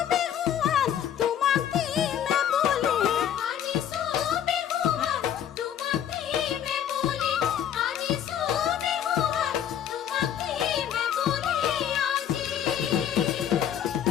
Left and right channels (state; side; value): quieter; right; 9.8 dB